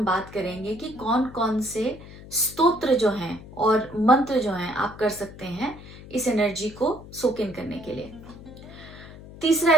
बात करेंगे कि कौन कौन से स्तोत्र जो हैं और मंत्र जो हैं आप कर सकते हैं इस एनर्जी को सोक इन करने के लिए। तीसरा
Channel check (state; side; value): noise; left; hum, 17 dB below the sound